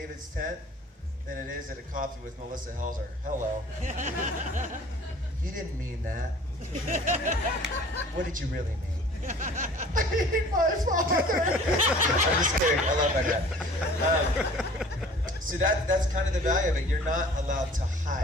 tent than it is at a coffee with Melissa Helser. Hello. You didn't mean that. What did you really mean? I hate my father. I'm just kidding. I love that guy. So that's kind of the value of it. You're not allowed to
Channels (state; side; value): normal; both; correlation 0.48